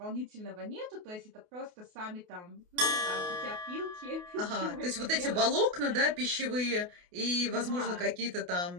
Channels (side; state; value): left; late; 28 ms